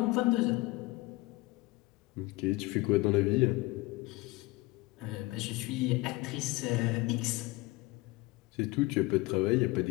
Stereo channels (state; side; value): quieter; right; 21.3 dB